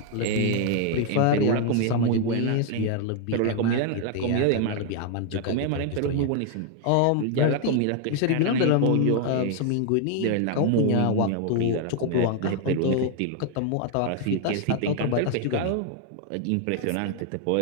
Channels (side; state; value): both; different; correlation 0.00